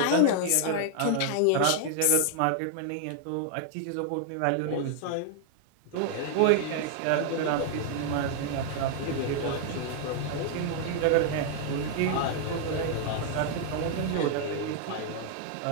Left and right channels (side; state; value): both; different; correlation 0.00